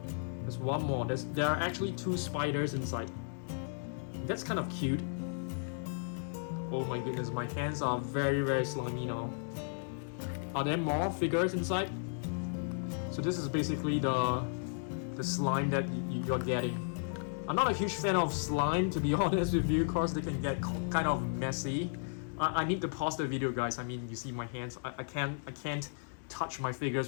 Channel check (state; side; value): silent; right; digital silence